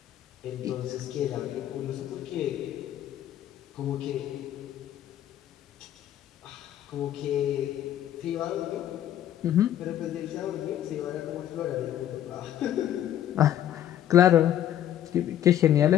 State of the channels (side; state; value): right; quieter; 11.3 dB